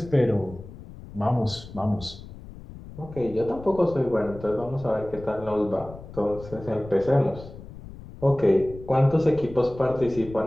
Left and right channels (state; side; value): noise; left; rumble, 15 dB below the sound